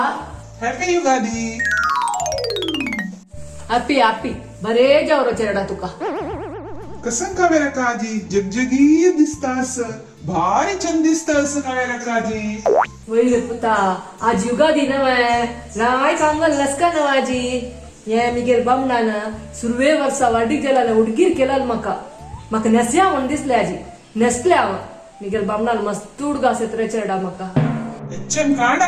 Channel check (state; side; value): identical; both; correlation 1.00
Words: happy Yugadi. Happy happy बरे जावरो चेडा तुका कसं कावेरा काजी जगजगी दिसतास भारी चंद दिसतास कावेरा काजी. वैर पुता आज युगादी नवे राय कांगल लसका नवाजी ये मिगेल बामणान सुरवे वर्सा वाडीक गेला उडगीर केला म्हाका नेस्या म्हण दिसले आजी नेसले हांव मिगेल बामणान मस्त उडगास येत रे चेडा म्हाका एचएम काणा